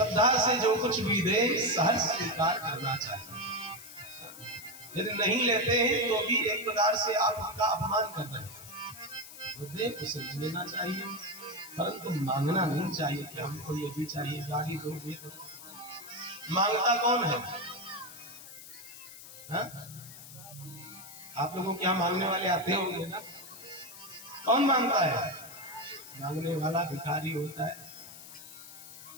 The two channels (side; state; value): left; noise; hiss, 15 dB below the sound